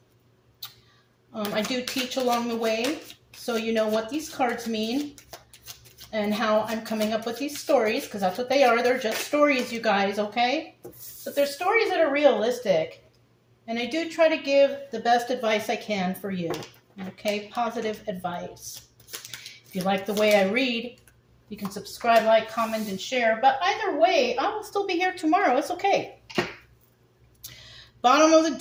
I do teach along the way, so you know what these cards mean and how I'm coming up with these stories, because that's what they are. They're just stories, you guys, okay? But they're stories that are realistic. And I do try to give the best advice I can for you, okay? Positive advice. If you like the way I read, you can subscribe, like, comment, and share. But either way, I will still be here tomorrow. It's okay. Bottom of the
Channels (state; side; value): identical; both; correlation 1.00